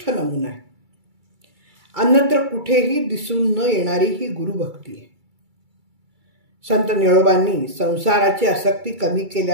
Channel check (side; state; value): left; late; 2.3 ms